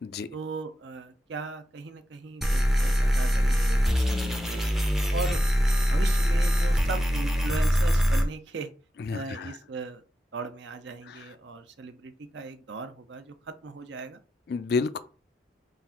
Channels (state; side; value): normal; both; correlation 0.90